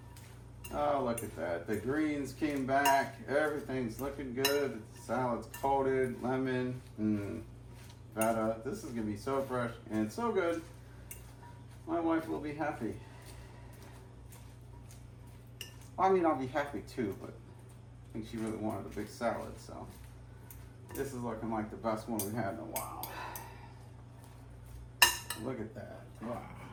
Oh, look at that. The greens came back. Everything's looking good. The salad's coated, lemon, feta. This is gonna be so fresh and so good. My wife will be happy. I mean, I'll be happy too, but I think she really wanted a big salad, so this is looking like the best one we've had in a while. Look at that. Wow.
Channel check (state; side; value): identical; both; correlation 1.00